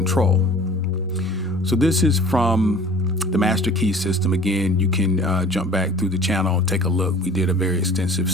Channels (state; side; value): normal; both; correlation 0.47